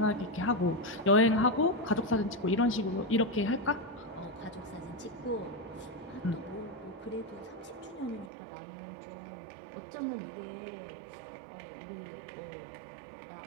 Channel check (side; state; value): left; drops out; at 8.3 s